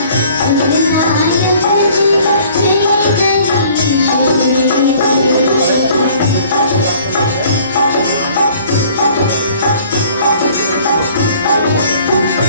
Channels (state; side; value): inverted; both; correlation -0.54